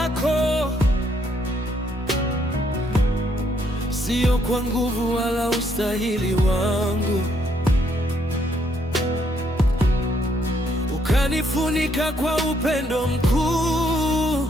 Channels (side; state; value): both; normal; correlation 0.71